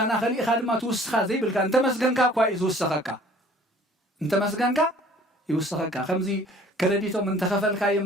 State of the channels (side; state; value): both; normal; correlation 0.52